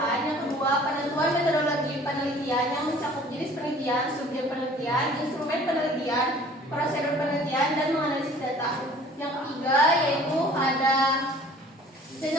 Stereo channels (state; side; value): normal; both; correlation 0.50